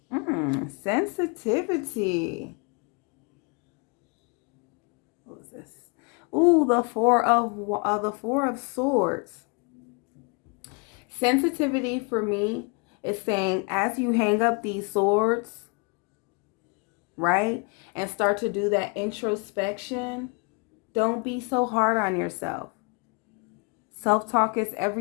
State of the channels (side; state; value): right; quieter; 33.1 dB